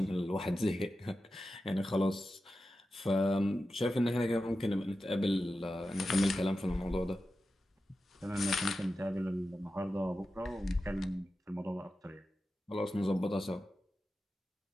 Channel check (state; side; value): normal; both; correlation 0.92